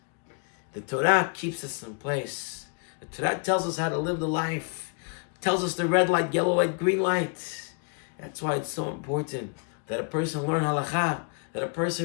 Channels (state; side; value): quieter; right; 38.2 dB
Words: The Torah keeps us in place. The Torah tells us how to live the life. Tells us the red light, yellow light, green light. That's why it's so important that a person learn halakha, that a